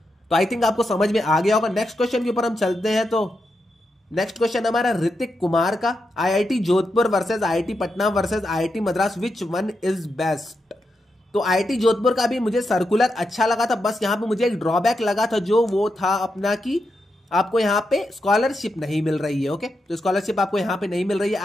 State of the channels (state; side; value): normal; both; correlation 0.86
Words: तो आई थिंक आपको समझ में आ गया होगा। नेक्स्ट क्वेश्चन के ऊपर हम चलते हैं। तो नेक्स्ट क्वेश्चन हमारा ऋतिक कुमार का, IIT Jodhpur versus IIT Patna versus IIT Madras, which one is best. तो आईआईटी जोधपुर का भी मुझे सर्कुलर अच्छा लगा था, बस यहाँ पे मुझे एक ड्रॉबैक लगा था, जो वो था अपना कि आपको यहाँ पे स्कॉलरशिप नहीं मिल रही है। ओके, तो स्कॉलरशिप आपको यहाँ पे नहीं मिल रही है।